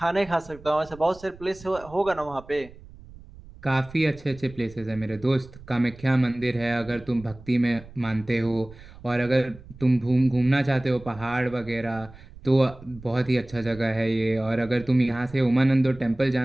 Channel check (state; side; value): noise; right; rumble, 20 dB below the sound